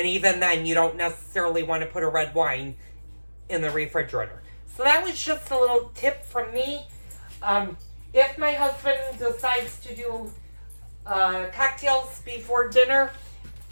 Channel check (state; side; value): inverted; both; correlation -1.00